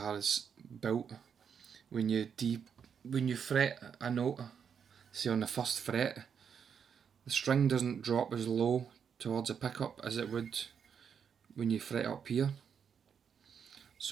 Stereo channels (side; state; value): left; quieter; 7.2 dB